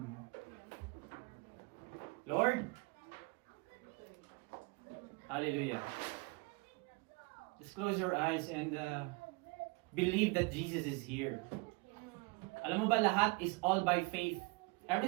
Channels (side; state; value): left; quieter; 27.5 dB